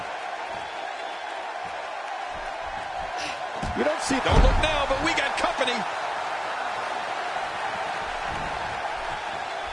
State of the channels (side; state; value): both; identical; correlation 1.00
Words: You don't see... Don't look now, but we got company.